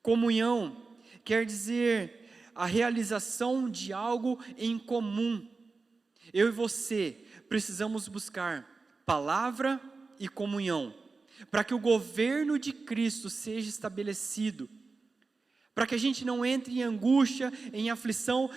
Comunhão quer dizer a realização de algo em comum. Eu e você precisamos buscar palavra e comunhão, para que o governo de Cristo seja estabelecido, para que a gente não entre em angústia, em aflição,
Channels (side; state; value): left; quieter; 4.1 dB